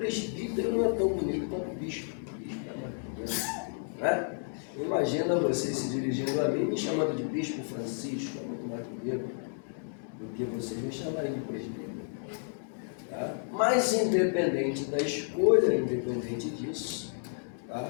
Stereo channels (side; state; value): right; silent; digital silence